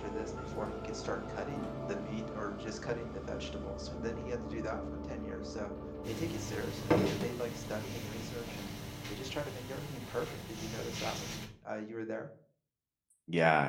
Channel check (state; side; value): identical; both; correlation 1.00